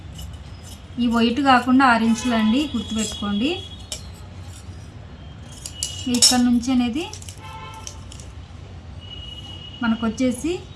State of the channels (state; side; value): identical; both; correlation 1.00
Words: ఈ వైట్ కాకుండా 6 ఇంచులు అండి, గుర్తుపెట్టుకోండి. ఇక్కడ నుంచి అనేది మనకు వచ్చేసి